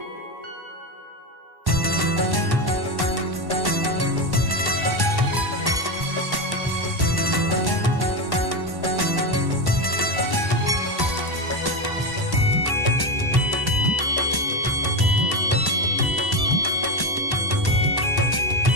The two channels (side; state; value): left; late; 1.1 ms